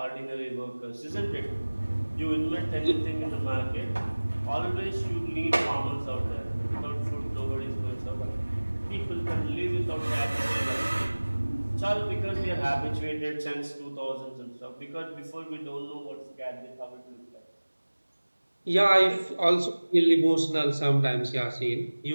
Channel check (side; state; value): both; inverted; correlation -1.00